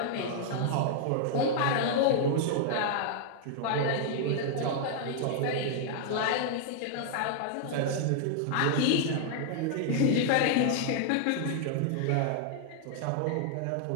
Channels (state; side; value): different; both; correlation -0.01